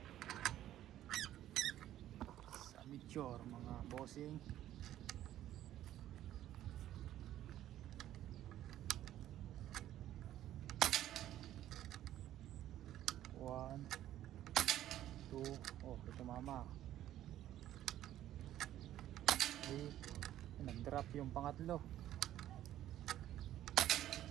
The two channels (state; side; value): quieter; left; 12.7 dB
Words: Sa Meteor mga bossing. One, two, oh ito mama. Nag-drop yung pangatlo.